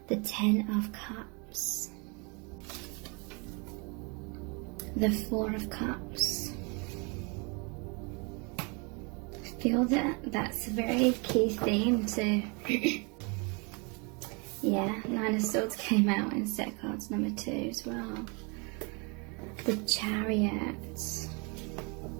The 10 of Cups, the 4 of Cups. I feel that that's a very key theme to yeah, 9 of Swords came out in set cards number 2 as well. The Chariot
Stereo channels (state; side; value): quieter; left; 31.8 dB